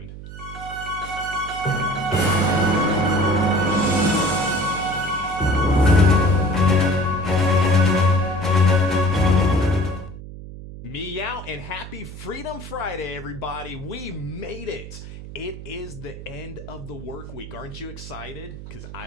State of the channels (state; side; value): noise; right; hum, 13 dB below the sound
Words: Meow and happy Freedom Friday, everybody. We made it. It is the end of the work week. Aren't you excited? Because I